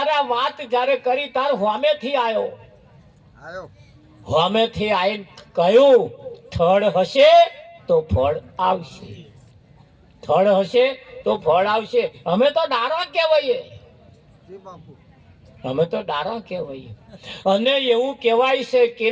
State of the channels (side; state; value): both; identical; correlation 1.00